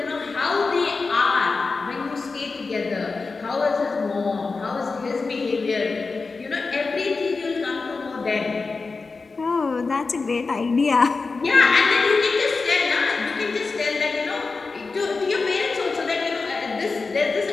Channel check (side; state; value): right; quieter; 4.2 dB